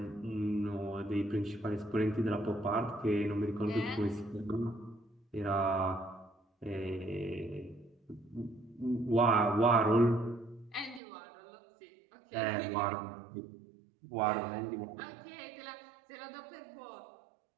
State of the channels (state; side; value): drops out; left; at 11.0 s